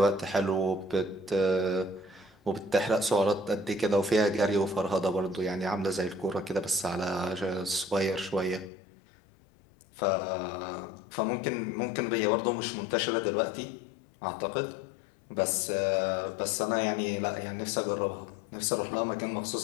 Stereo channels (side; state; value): right; drops out; at 8.7 s